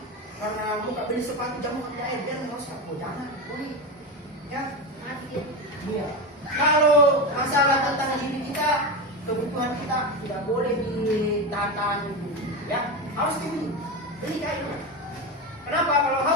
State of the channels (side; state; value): both; normal; correlation 0.18